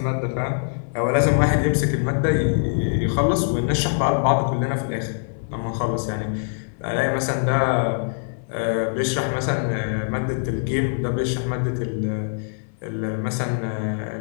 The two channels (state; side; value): silent; right; 60 dB below the other